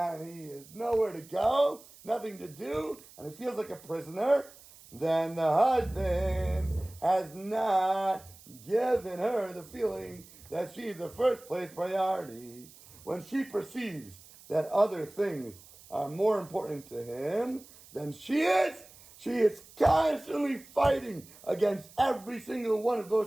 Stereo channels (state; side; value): noise; right; hiss, 22 dB below the sound